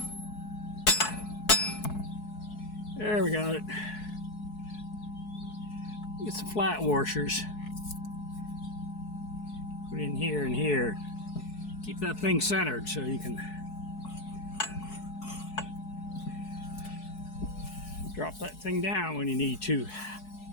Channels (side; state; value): right; late; 4.7 ms